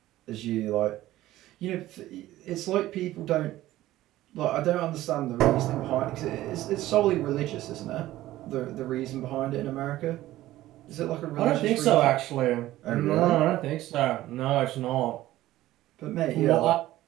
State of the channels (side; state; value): left; quieter; 15.4 dB